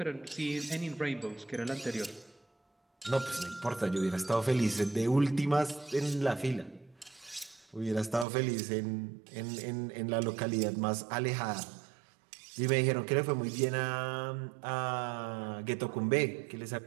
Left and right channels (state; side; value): drops out; left; at 8.2 s